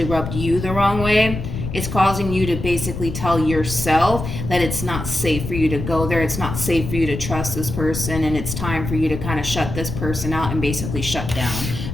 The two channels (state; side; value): noise; left; rumble, 6 dB below the sound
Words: rubbed you the wrong way, it's causing you to basically tell yourself that it's not safe for you to go there. It's not safe for you to trust this person, and it's time for you to kind of shut this person out and basically shut down